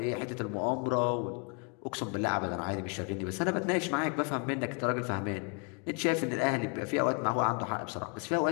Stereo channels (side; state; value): right; quieter; 35.5 dB